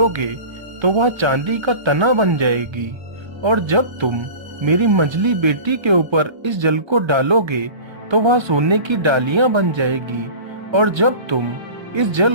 तो वह चांदी का तना बन जाएगी, और जब तुम मेरी मझली बेटी के ऊपर इस जल को डालोगे तो वह सोने की डालियां बन जाएगी, और जब तुम इस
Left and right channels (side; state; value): left; late; 1.3 ms